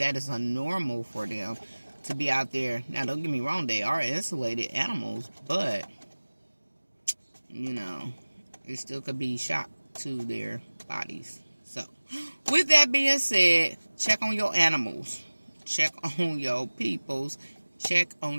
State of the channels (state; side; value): inverted; both; correlation -1.00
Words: is unnormal for them to be out there. Now, don't get me wrong, they are insulated animals, but, you know, it still could be shock to their bodies. So, with that being said, check on your animals. Check on your peoples. Check